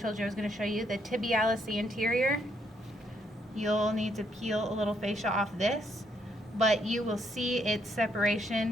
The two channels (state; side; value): normal; both; correlation 0.73